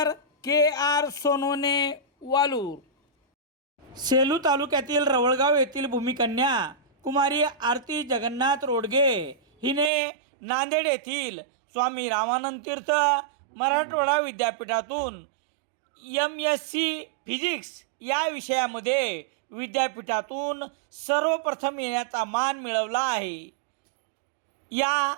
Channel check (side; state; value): left; drops out; at 9.9 s